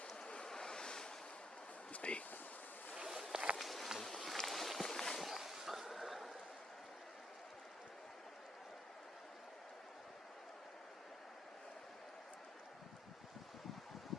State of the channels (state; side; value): normal; both; correlation 0.76